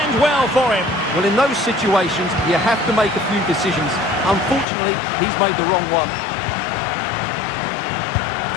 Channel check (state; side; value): drops out; right; at 4.7 s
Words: well for him. Well, in those situations, you have to make a few decisions. Unfortunately, he's made the wrong one.